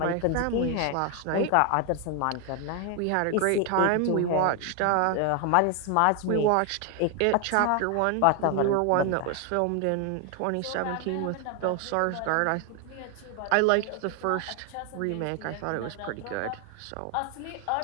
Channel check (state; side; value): different; both; correlation 0.01